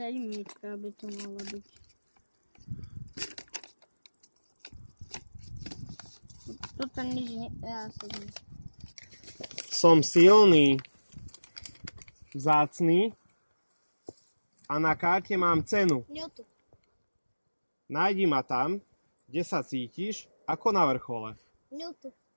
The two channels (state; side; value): inverted; both; correlation -1.00